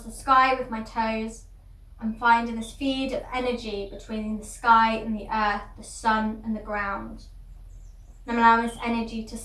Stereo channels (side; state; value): both; identical; correlation 1.00